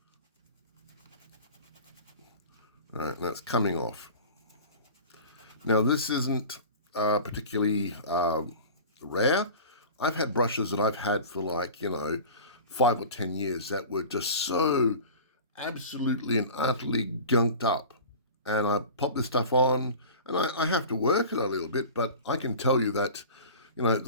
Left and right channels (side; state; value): both; inverted; correlation -0.38